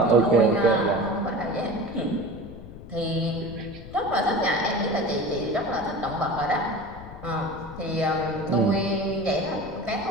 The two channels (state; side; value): noise; left; rumble, 14 dB below the sound